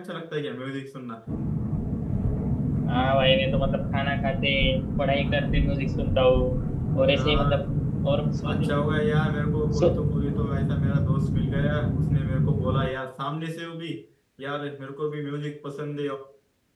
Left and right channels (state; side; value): identical; both; correlation 1.00